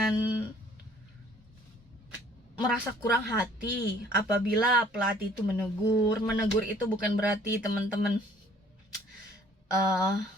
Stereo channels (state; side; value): normal; both; correlation 0.57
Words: merasa kurang hati apabila pelatih itu menegur. Menegur itu bukan berarti teman-teman